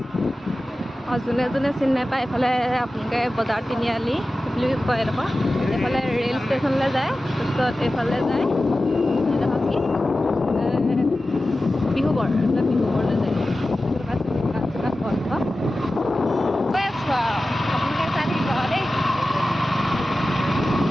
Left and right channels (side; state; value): both; normal; correlation 0.95